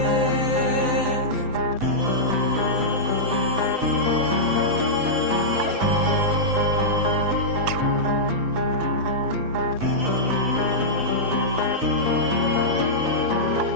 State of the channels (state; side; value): late; left; 7.9 ms